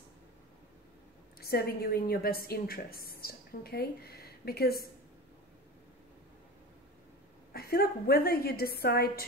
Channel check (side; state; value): both; normal; correlation 0.31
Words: serving you in your best interest, okay? Because I feel like whether you decide